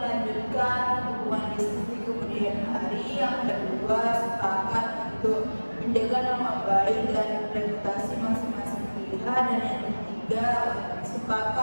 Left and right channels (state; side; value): inverted; both; correlation -1.00